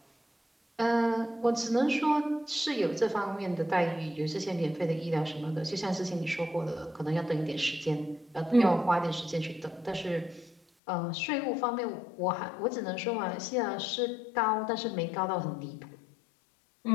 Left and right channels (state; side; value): drops out; right; at 10.6 s